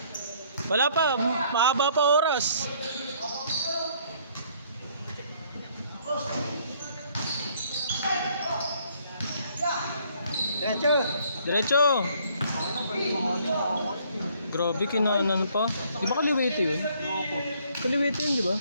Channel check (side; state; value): both; inverted; correlation -0.62